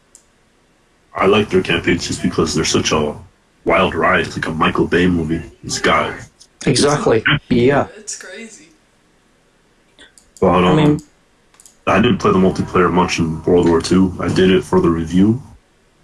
like their campaigns just because they're such a wild ride. It's like a Michael Bay movie. This guy. Exactly. Yeah. It's crazy. But I didn't play the multiplayer much in World War II. I did it for the review.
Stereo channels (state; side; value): identical; both; correlation 1.00